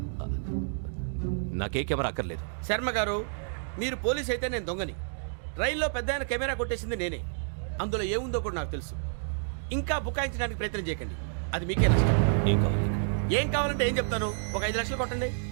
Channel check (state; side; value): silent; left; digital silence